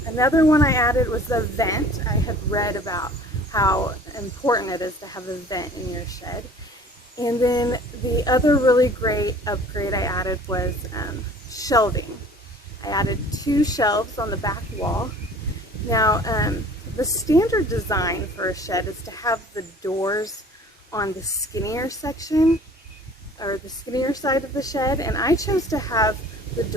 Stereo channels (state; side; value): normal; both; correlation 0.49